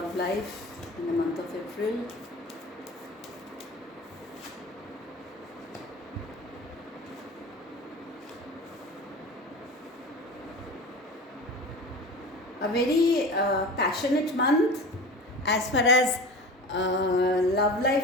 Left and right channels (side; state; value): both; normal; correlation 0.33